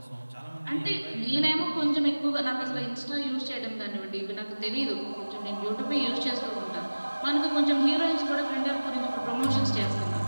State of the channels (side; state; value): both; inverted; correlation -1.00